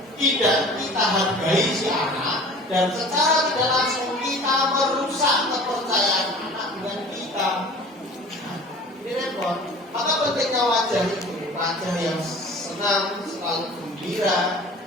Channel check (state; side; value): normal; both; correlation 0.44